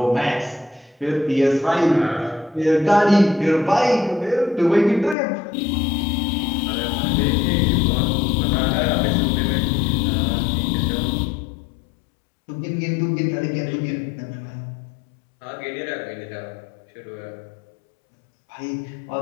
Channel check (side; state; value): right; drops out; at 5.2 s